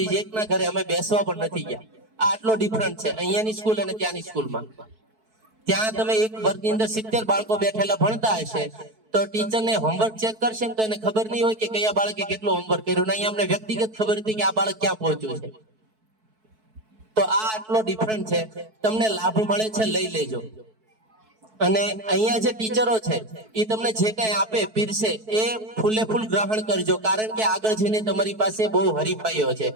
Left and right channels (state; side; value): late; left; 4.6 ms